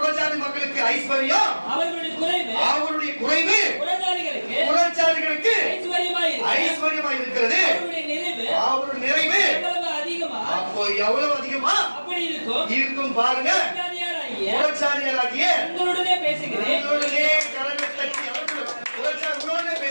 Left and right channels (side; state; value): both; inverted; correlation -1.00